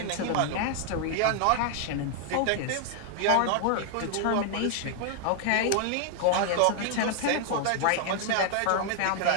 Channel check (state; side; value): different; both; correlation 0.00